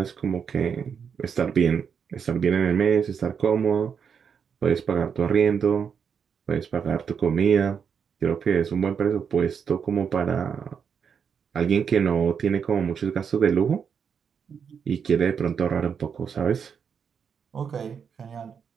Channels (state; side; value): quieter; left; 6.9 dB